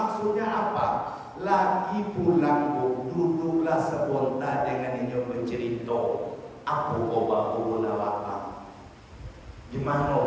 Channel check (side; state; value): both; identical; correlation 1.00